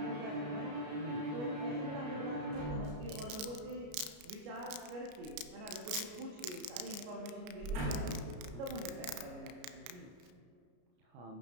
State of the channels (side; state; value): left; late; 33 ms